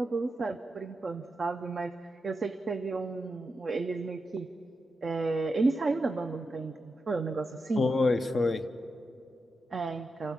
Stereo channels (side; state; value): both; normal; correlation 0.87